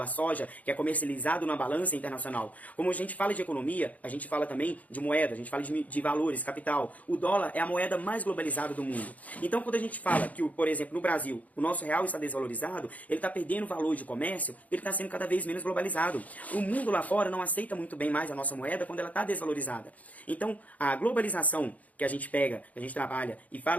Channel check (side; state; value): right; late; 0.073 ms